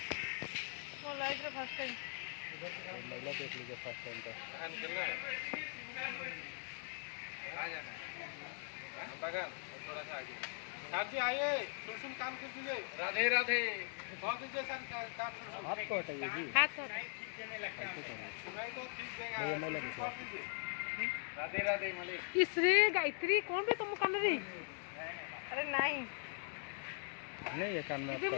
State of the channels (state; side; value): silent; right; 50 dB below the other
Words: वो लाइट रे फर्स्ट टाइम महिला देख लीजिए फर्स्ट टाइम का। आ जाना बगल थोड़ा सा आगे। साथी आइए, सुन काम कर दीजिए। राधे राधे। बहुत दीजिए सर काम। हाथ को हटाइए जी, हाथ तो सुनाई तो ठीक देगा। ये महिला की राधे राधे मिले। इसरे गायत्री कौन बे तुम कान रे? अरे नहीं नहीं ये कान में इबे